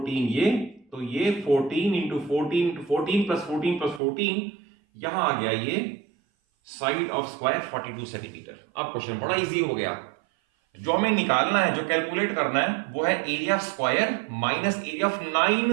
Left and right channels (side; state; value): left; drops out; at 4.0 s